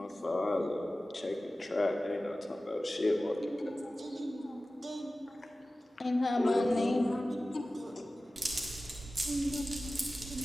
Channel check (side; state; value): both; normal; correlation 0.96